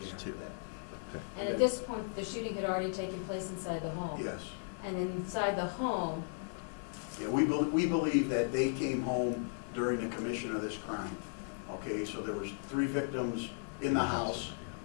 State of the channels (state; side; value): silent; right; digital silence